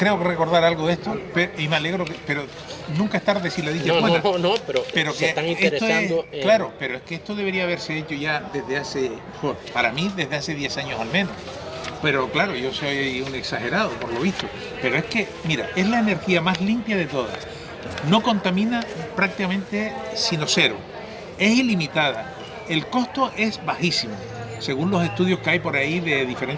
que recordar algo de esto, y me alegro, pero nunca es tarde si la dicha es buena. No, pero que se están interesando en... Claro, pero es que esto debería haberse hecho ya desde hace, para mí, desde hace 10 años al menos. Pero claro, yo soy un exagerado, por lo visto. Pero es que, mira, es la energía más limpia de todas. No contamina prácticamente sino cero. Es ilimitada. El costo es bajísimo, según los estudios que hay por ahí de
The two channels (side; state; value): both; identical; correlation 1.00